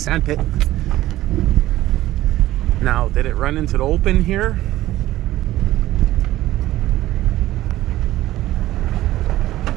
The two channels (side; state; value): left; quieter; 15.3 dB